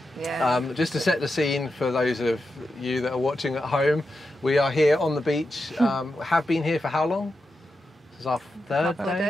Yeah. Just to set the scene for those of you that are watching at home, we are here on the beach. Have been here for how long? This is our third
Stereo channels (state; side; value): normal; both; correlation 0.88